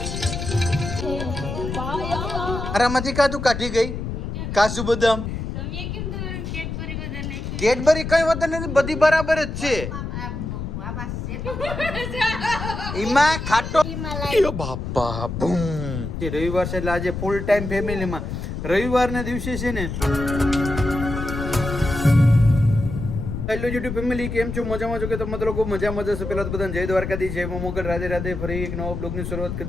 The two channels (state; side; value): noise; left; rumble, 5 dB below the sound